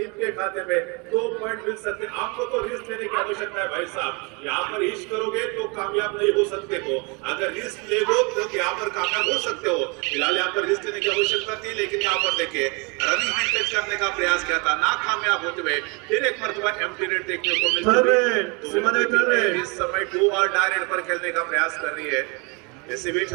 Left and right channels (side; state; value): left; quieter; 30.7 dB